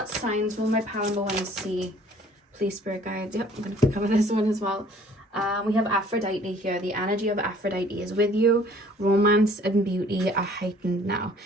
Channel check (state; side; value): normal; both; correlation 0.55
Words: signs will my pile number 1 see, please, spirit guides? Yep, I'm going to cover this one as well. We have Aphrodite here. The energy of Aphrodite is with you. Romance and beauty are heightened now.